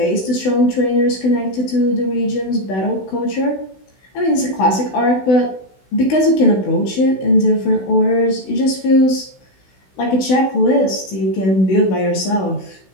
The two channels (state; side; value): late; right; 16 ms